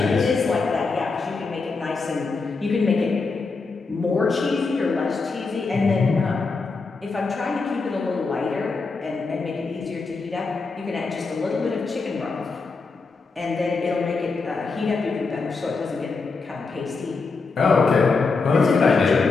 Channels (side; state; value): right; quieter; 4.3 dB